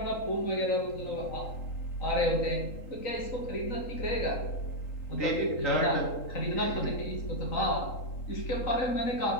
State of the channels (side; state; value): right; late; 3.8 ms